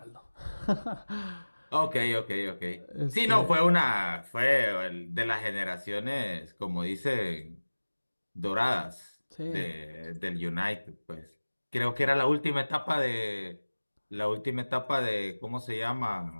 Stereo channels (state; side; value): inverted; both; correlation -1.00